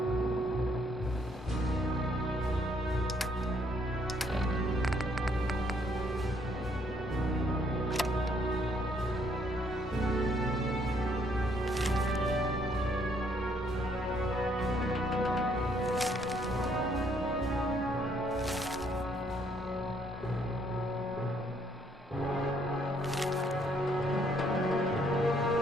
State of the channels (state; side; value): normal; both; correlation 0.68